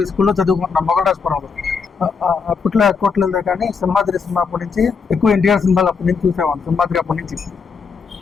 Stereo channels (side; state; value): right; quieter; 5.5 dB